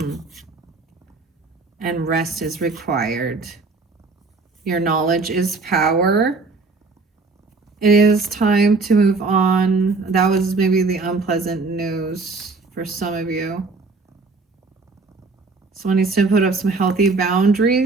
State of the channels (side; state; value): left; quieter; 3.9 dB